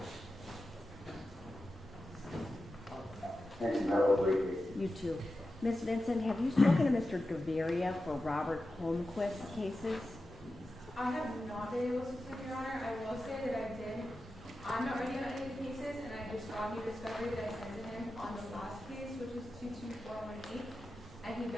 Thank you, Madam Leader. You too. Ms. Vincent, have you spoken to Mr. Gaviria for Robert Holmquist cases? I have not been able to speak, Your Honor. I will say that I did. I'm not ready on any of the cases, and I just got new discovery that I sent to him on the last case, which is 22418. And he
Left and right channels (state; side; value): noise; left; rumble, 23 dB below the sound